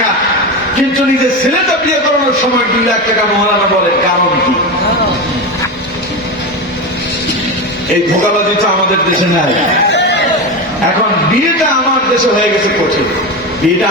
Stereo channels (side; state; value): both; normal; correlation 0.19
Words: কিন্তু নিজের ছেলেটা বিয়ে করানোর সময় 2 লাখ টাকা মহারানা বলেন, কারণ কি? এই ধোঁকাবাজি তো আমাদের দেশে নাই। এখন বিয়েটা আমার দেশে হয়ে গেছে কঠিন, বিয়েটা